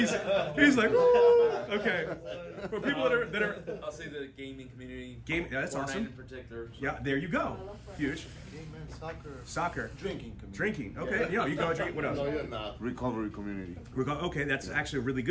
like, woo! Okay. For people that are I'll say the gaming community. Yeah, that's Fortnite awesome. in particular. So. Yeah, there you go. Huge. Game, soccer. Soccer. Drinking community. Drinking. Okay. Yeah, you go drink. What else? No, you're not. Recovery community. Okay, that's actually a really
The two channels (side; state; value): both; identical; correlation 1.00